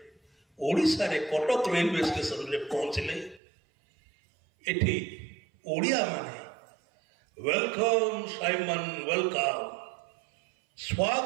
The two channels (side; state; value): left; drops out; at 3.4 s